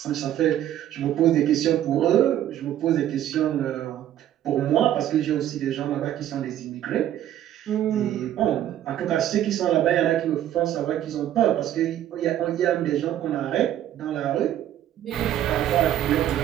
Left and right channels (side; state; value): left; quieter; 11.8 dB